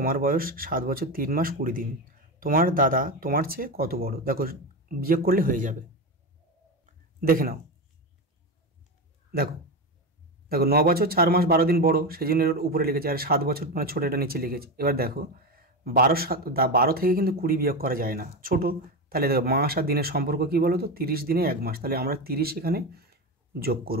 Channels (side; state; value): both; normal; correlation 0.17